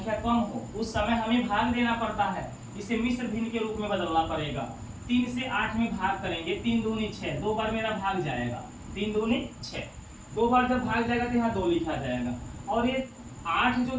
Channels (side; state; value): both; identical; correlation 1.00